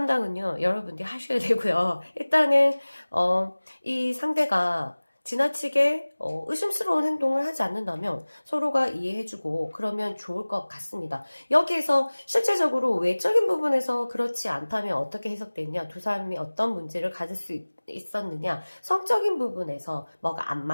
여러분들이 하셔야 되고요. 일단은 이 상대가 지나치게 의심스러운 행동을 하지 않는다면 서로가 이해해주고 그러면 좋을 것 같습니다. 여기에서 실제적으로 외적인 부분에서 그렇지 않다면 어떻게 해석됐냐, 두 사람이 어떤 문제를 가질 수 있었느냐, 성적인 부분에서 뭐가 안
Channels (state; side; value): inverted; both; correlation -1.00